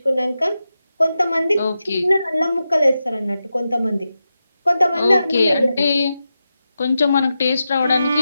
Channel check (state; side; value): inverted; both; correlation -0.90